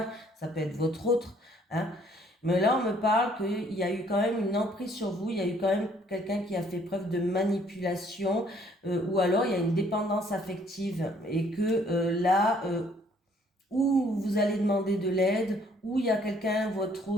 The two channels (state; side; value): normal; both; correlation 0.62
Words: ça peut être votre autre, hein. Mais là, on me parle qu'il y a eu quand même une emprise sur vous, il y a eu quand même quelqu'un qui a fait preuve de manipulation, ou alors il y a une dépendance affective, et que là, où vous allez demander de l'aide, où il y a quelqu'un, votre